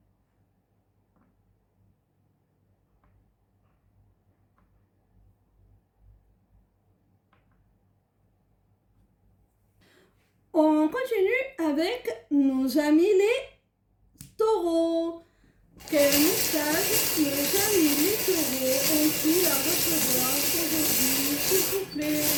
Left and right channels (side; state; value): both; identical; correlation 1.00